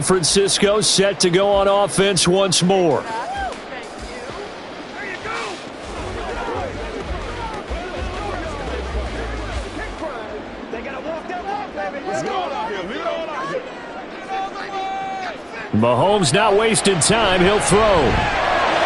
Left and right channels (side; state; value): both; identical; correlation 1.00